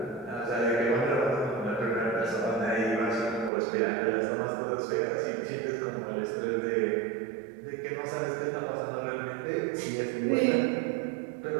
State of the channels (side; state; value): left; drops out; at 3.5 s